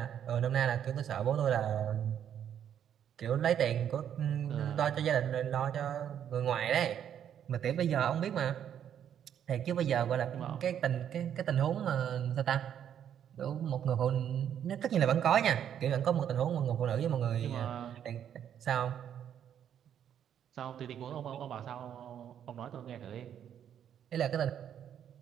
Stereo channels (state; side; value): quieter; left; 9.4 dB